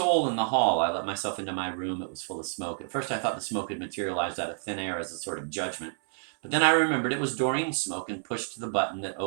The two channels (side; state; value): left; silent; 59 dB below the other